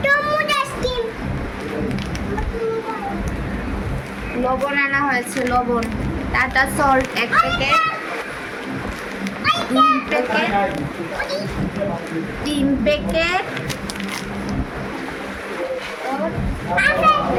লবণ আনা হয়েছে, লবণ। Tata salt 1 packet, 2 packet, 3 packet,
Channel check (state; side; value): identical; both; correlation 1.00